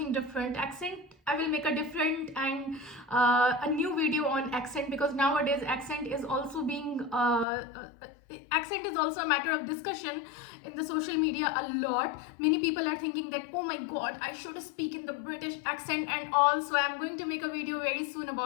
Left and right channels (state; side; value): drops out; right; at 7.5 s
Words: different. Accent, I will make a different and a new video on accent, because nowadays accent is also a matter of discussion in the social media a lot. Many people are thinking that, oh my god, I should speak in the British accent and all. So I'm going to make a video very soon